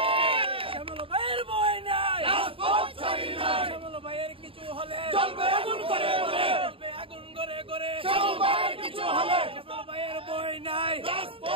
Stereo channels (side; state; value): left; late; 0.26 ms